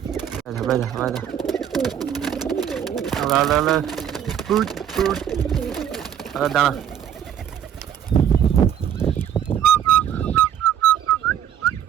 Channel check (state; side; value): quieter; left; 9.4 dB